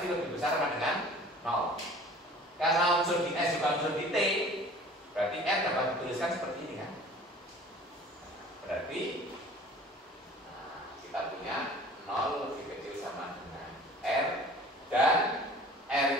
lebih besar sama dengan 0. Karena unsur di S juga unsur di T, berarti R dapat dituliskan seperti ini kan. Berarti kita punya 0 lebih kecil sama dengan R, dan R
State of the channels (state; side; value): normal; both; correlation 0.47